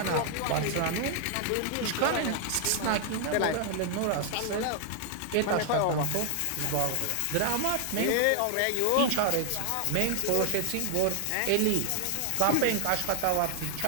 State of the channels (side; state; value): both; different; correlation 0.00